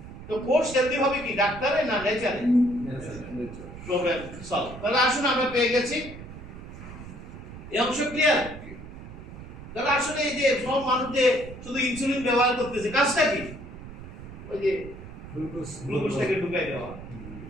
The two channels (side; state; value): right; noise; rumble, 13 dB below the sound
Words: তো কোষ হেলদি হবে কি ডাক্তারে না নেচারে? Problem solve. তাহলে আসুন, আমরা পেয়ে গেছি এই অংশ ক্লিয়ার। তাহলে আসলে এই যে সব মানুষ যে শুধু ইনসুলিন ব্যবহার করতেছে, কাজটা কি? ওই যে গ্লুকোজটাকে ঢুকাই দেওয়া।